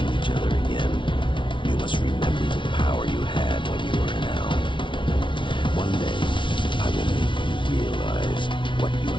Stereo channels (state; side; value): late; right; 0.24 ms